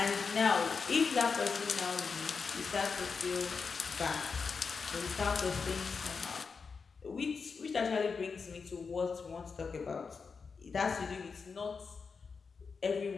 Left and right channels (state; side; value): quieter; right; 5.2 dB